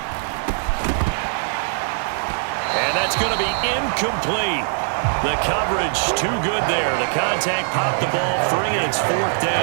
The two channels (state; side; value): silent; left; 62 dB below the other